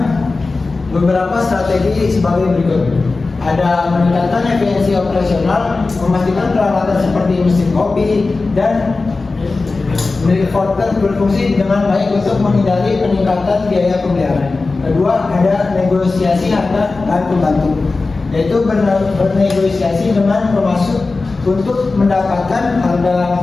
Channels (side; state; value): right; quieter; 3.7 dB